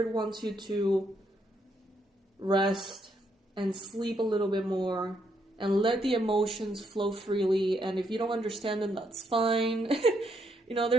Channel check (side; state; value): both; normal; correlation 0.75